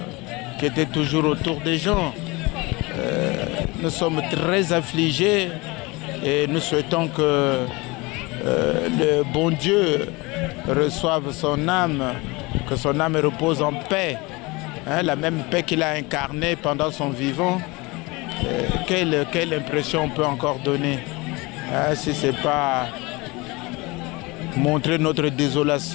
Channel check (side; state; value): right; quieter; 24.4 dB